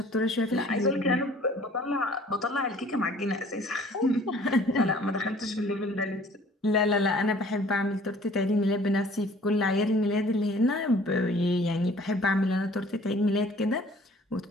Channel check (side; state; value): both; normal; correlation 0.53